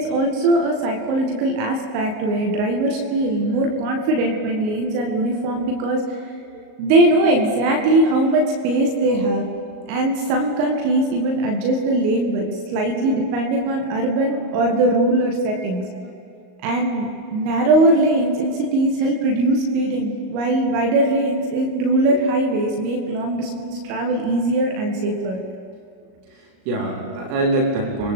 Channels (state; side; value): late; left; 38 ms